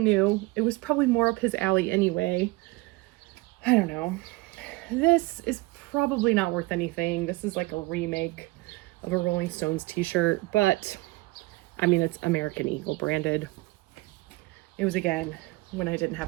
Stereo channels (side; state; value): left; quieter; 22.2 dB